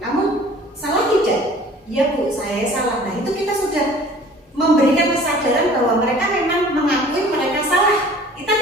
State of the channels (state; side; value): normal; both; correlation 0.49